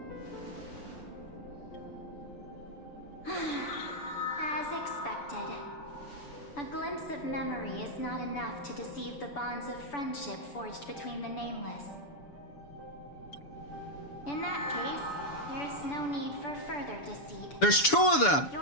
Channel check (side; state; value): right; late; 6.9 ms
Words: As expected. A glimpse of memory is not enough to deceive the bonds of friendship forged between the nameless. In that case, there's no need for further deceit. There's two of them!